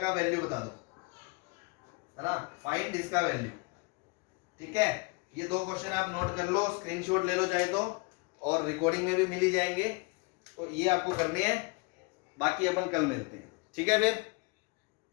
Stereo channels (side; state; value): right; quieter; 28.4 dB